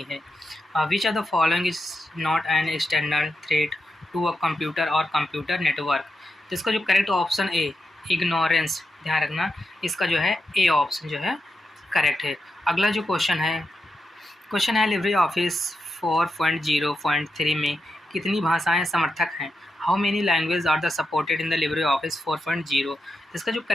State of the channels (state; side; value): normal; both; correlation 0.87